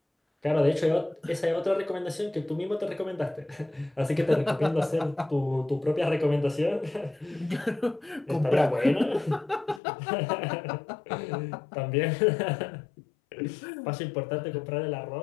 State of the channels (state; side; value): drops out; right; at 9.8 s